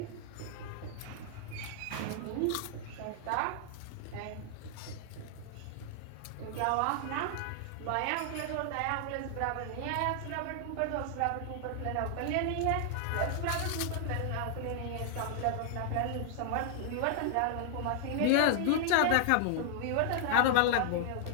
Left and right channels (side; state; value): both; different; correlation 0.00